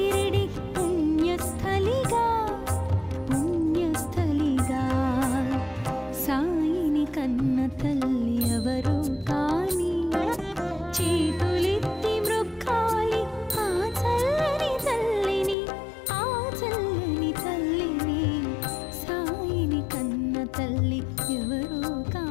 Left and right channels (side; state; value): right; drops out; at 15.6 s